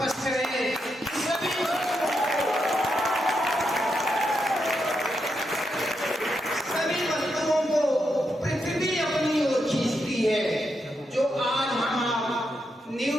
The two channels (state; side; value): normal; both; correlation 0.83